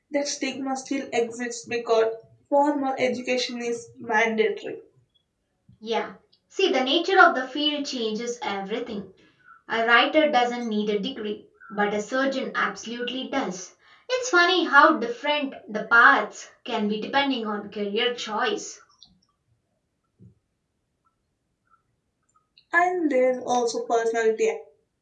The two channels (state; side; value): identical; both; correlation 1.00